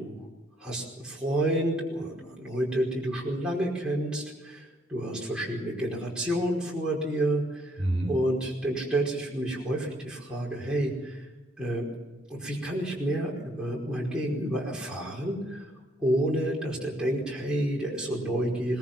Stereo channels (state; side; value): normal; both; correlation 0.69